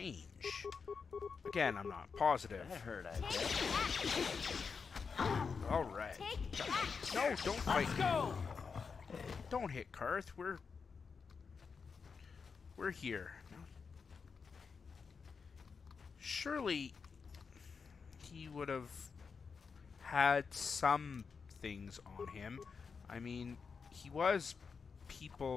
Again, I'm not positive. That hurt, I bet. Alright. No, don't fight. Let's go! Don't hit Carth. We're here. Surely he would have had some things on him. I mean, he was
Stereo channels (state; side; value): quieter; right; 5.5 dB